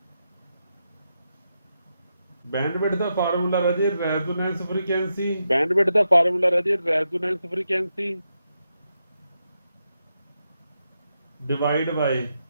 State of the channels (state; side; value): inverted; both; correlation -0.85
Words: ਵਿਡਥ ਦਾ ਫਾਰਮੂਲਾ ਰਾਜੇ ਰੈਜ਼ੋਨੈਂਸ ਫ੍ਰੀਕੁਐਂਸੀ, ਬੈਂਡ ਵਿਡਥ ਦਾ ਫਾਰਮੂਲਾ ਰਾਜੇ resonance frequency divide by